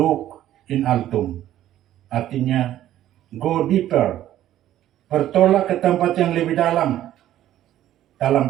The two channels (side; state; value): left; quieter; 12.7 dB